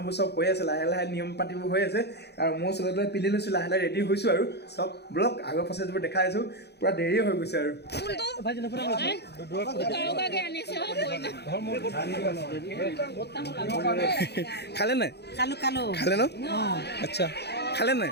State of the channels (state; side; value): late; right; 0.48 ms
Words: চব হৈ আছে, লাহে লাহে নিয়ম পাতিবোৰ হৈ আছে আৰু মই চবে পিন্ধি লৈছোঁ, লাহে লাহে ৰেডি হৈছোঁ আৰু চব ব্লগ আগৰ প্ৰচেছবোৰ দেখাই আছোঁ। পূৰা দেৰি হৈ গৈছে আৰু খালে নাই? খালে ন? আচ্ছা খালে নাই?